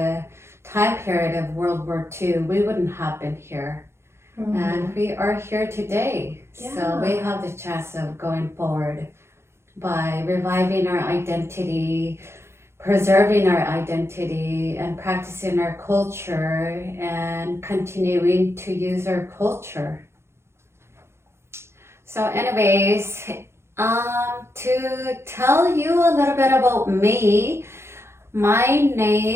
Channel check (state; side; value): late; left; 0.12 ms